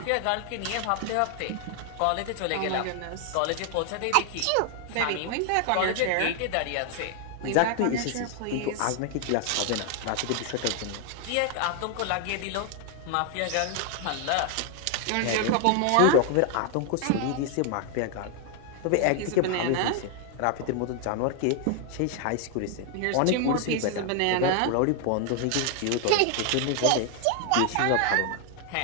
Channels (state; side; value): different; both; correlation 0.00